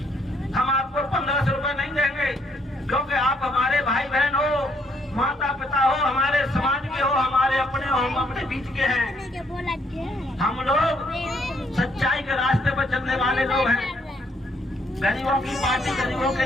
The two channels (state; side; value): normal; both; correlation 0.70